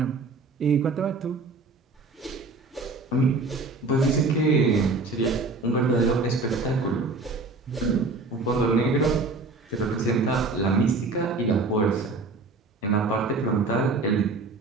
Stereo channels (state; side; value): quieter; left; 3.6 dB